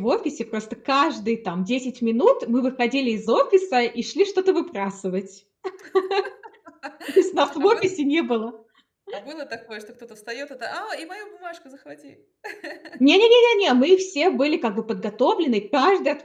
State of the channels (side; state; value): both; identical; correlation 1.00